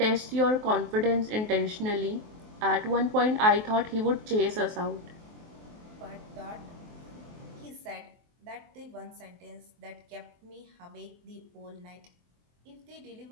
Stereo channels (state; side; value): late; left; 23 ms